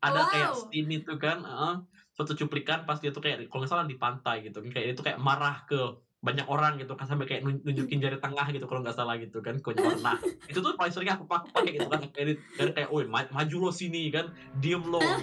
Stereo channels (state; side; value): identical; both; correlation 1.00